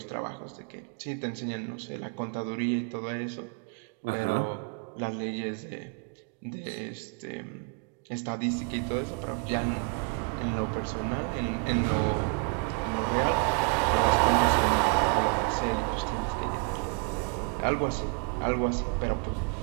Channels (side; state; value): left; quieter; 35.5 dB